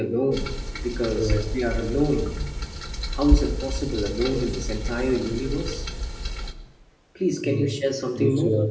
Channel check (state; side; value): identical; both; correlation 1.00